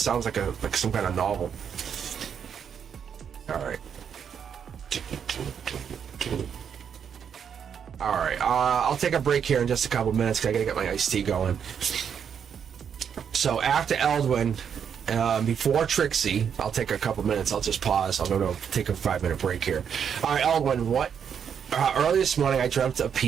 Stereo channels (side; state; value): left; quieter; 7.7 dB